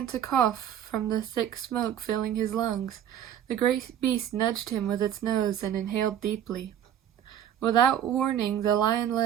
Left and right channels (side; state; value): left; quieter; 10.2 dB